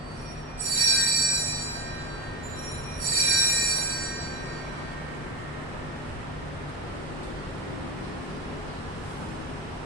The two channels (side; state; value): both; normal; correlation 0.15